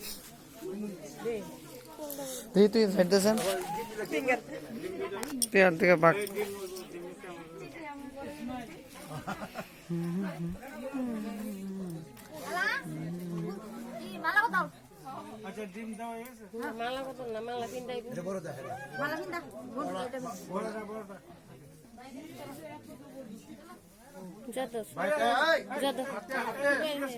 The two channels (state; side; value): identical; both; correlation 1.00